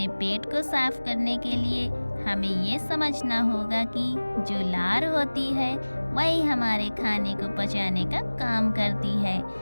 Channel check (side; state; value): both; inverted; correlation -1.00